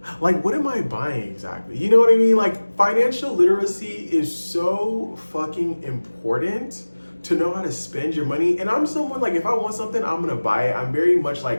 Like, what am I buying exactly? You know what I mean? Like, financial literacy is so fucking important to know how to spend your money. And I'm someone like, if I want something, I'm gonna buy it. I'm very much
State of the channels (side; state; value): both; inverted; correlation -1.00